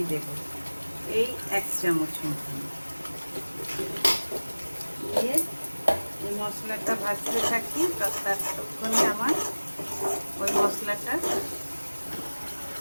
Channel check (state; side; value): inverted; both; correlation -1.00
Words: দেব, এই 1 চামচ মতন দিয়ে এই মশলাটা ভাজতে থাকি। ততক্ষণে আমার ওই মশলাটা